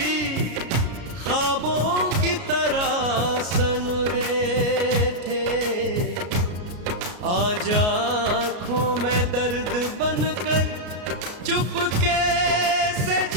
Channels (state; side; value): late; left; 33 ms